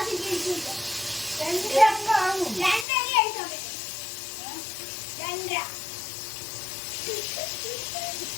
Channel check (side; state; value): right; drops out; at 2.9 s